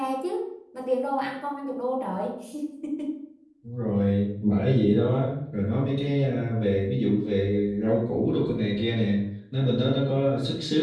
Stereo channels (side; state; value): both; identical; correlation 1.00